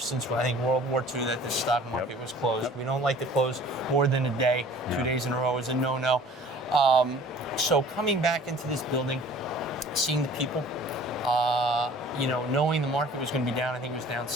since, I think, World War II that the stock market was closed. We don't like to close more than a day. 2 days in a row is a no-no. So coming back into this building, seeing the people, knowing the market was going to be down, I think it was down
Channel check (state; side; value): normal; both; correlation 0.49